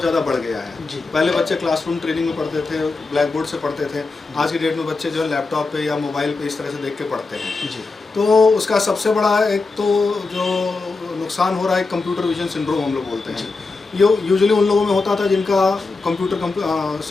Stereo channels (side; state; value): right; quieter; 3.9 dB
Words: ज़्यादा बढ़ गया है। पहले बच्चे क्लासरूम ट्रेनिंग में पढ़ते थे, ब्लैक बोर्ड से पढ़ते थे। आज की डेट में बच्चे जो है लैपटॉप पे या मोबाइल पे इस तरह से देख के पढ़ते हैं। तो उसका सबसे बड़ा एक तो जो नुकसान हो रहा है, कंप्यूटर विजन सिंड्रोम हम लोग बोलते हैं। ये यूजुअली उन लोगों में होता था जिनका